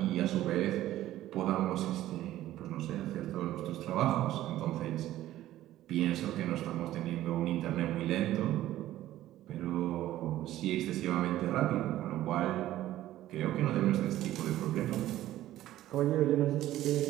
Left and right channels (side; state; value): left; quieter; 14.2 dB